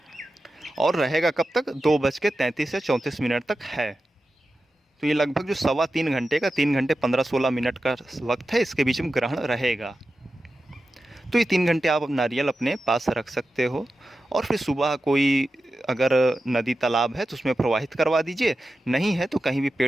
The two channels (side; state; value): both; normal; correlation 0.92